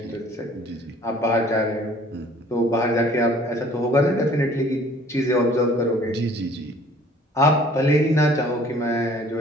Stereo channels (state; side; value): normal; both; correlation 0.54